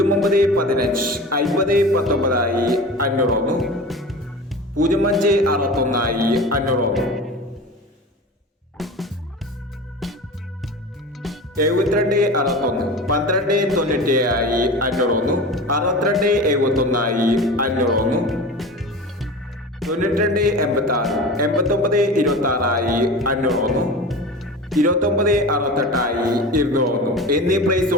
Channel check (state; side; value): normal; both; correlation 0.33